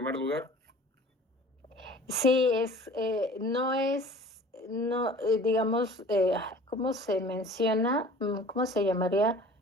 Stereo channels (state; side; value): normal; both; correlation 0.46